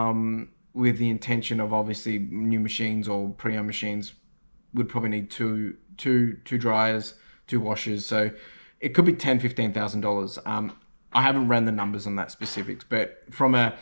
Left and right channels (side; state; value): both; inverted; correlation -1.00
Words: with the intention of obviously new machines or pre-owned machines would probably need two dryers, two washers. So it could be $10,000-$15,000. I haven't ran the numbers on that specifics, but from a